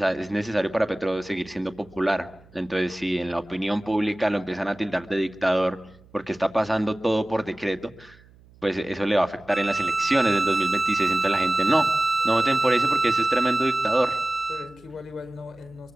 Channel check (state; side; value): noise; right; hum, 27 dB below the sound